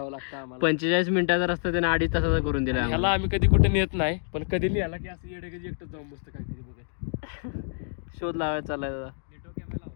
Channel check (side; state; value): right; silent; digital silence